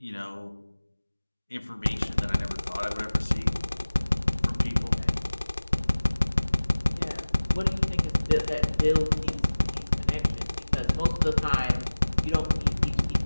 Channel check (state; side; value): inverted; both; correlation -1.00